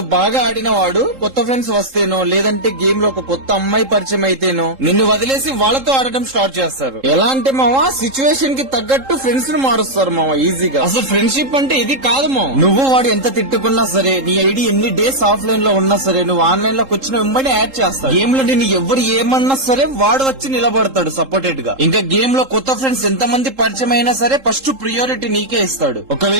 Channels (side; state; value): left; late; 3.7 ms